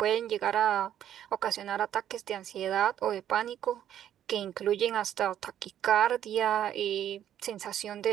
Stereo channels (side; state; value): left; quieter; 10.7 dB